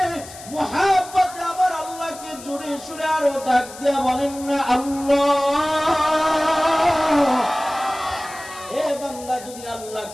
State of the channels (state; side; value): noise; left; hiss, 16 dB below the sound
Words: মোহাব্বতে আমার আল্লাহকে জোরে সুরে আরো ডাক দিয়ে বলেন না আল্লাহ। এ বান্দা, যদি